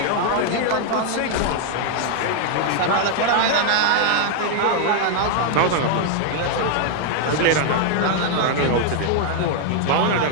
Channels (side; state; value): both; different; correlation 0.00